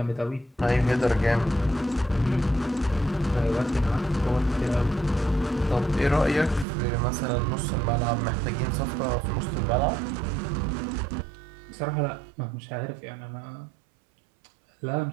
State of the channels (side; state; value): left; drops out; at 6.7 s